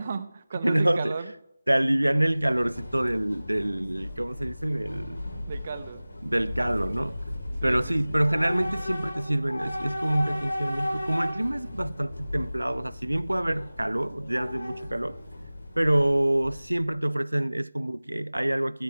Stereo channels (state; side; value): inverted; both; correlation -0.99